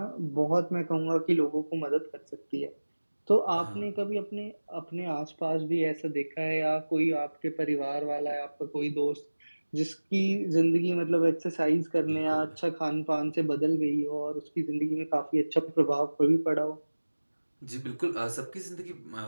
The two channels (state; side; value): inverted; both; correlation -1.00